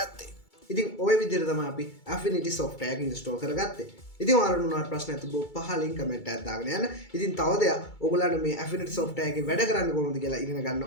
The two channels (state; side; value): late; right; 2.3 ms